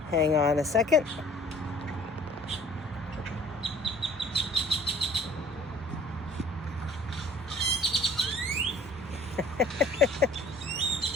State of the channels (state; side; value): normal; both; correlation 0.52